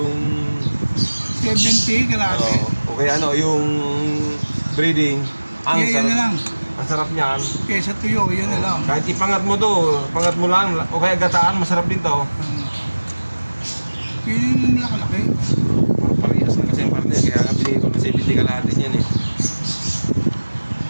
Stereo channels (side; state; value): both; inverted; correlation -1.00